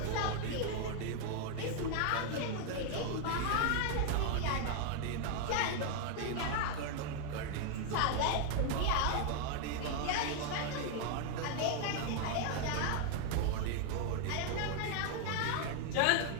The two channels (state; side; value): different; both; correlation 0.00